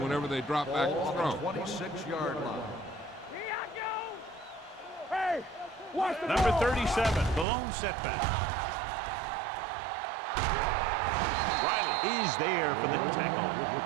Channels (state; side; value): drops out; left; at 7.5 s